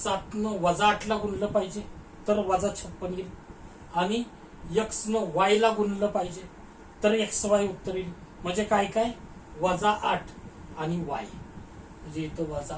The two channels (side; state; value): both; identical; correlation 1.00